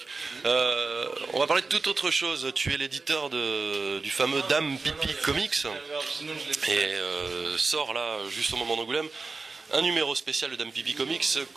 On va parler de toute autre chose. Tu es l'éditeur du fameux Dame Pipi Comics et sort là, juste au moment d'Angoulême, un numéro spécial de Dame Pipi Comics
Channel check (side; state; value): left; quieter; 4.0 dB